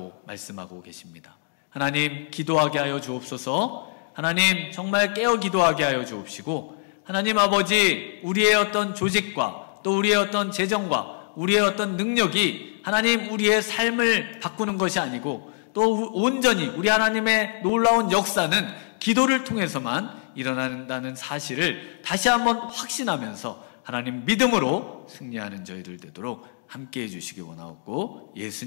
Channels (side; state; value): right; silent; digital silence